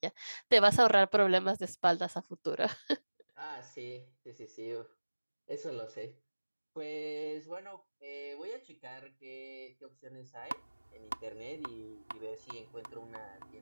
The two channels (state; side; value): inverted; both; correlation -1.00